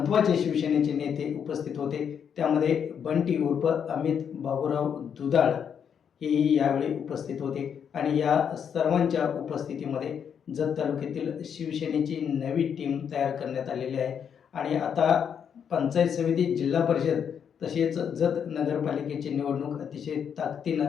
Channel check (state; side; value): quieter; right; 7.7 dB